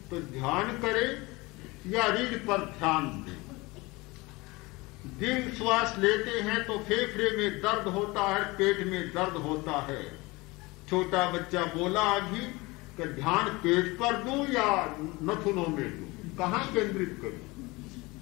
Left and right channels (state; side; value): quieter; right; 23.2 dB